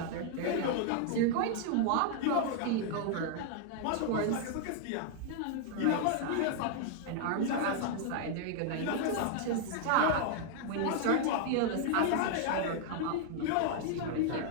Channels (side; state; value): both; different; correlation 0.00